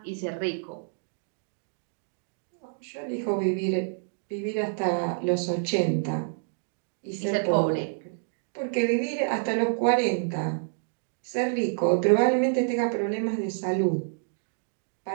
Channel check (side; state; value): left; silent; digital silence